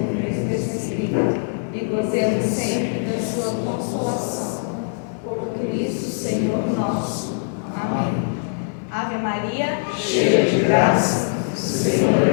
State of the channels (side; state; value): right; silent; 64 dB below the other